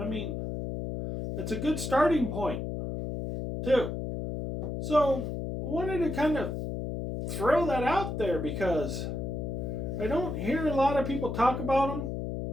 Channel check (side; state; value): left; noise; hum, 4 dB below the sound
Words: mean, it's a good starting point, too. So, I wanted to kind of throw that out there because I don't hear a lot of people talk about them.